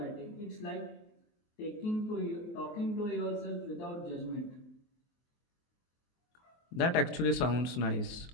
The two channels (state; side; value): late; right; 23 ms